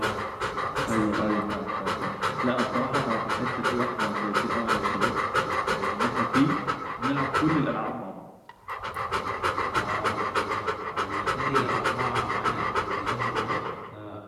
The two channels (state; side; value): identical; both; correlation 1.00